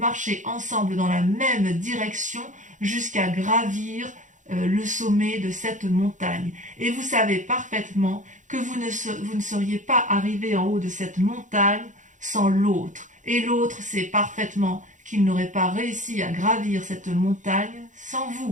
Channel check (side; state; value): left; late; 0.36 ms